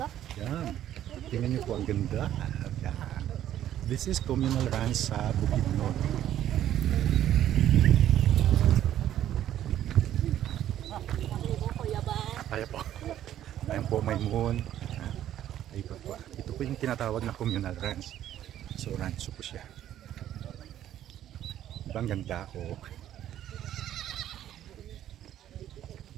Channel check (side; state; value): left; quieter; 11.7 dB